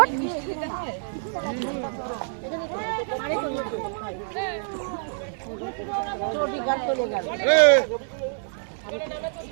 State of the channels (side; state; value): left; silent; digital silence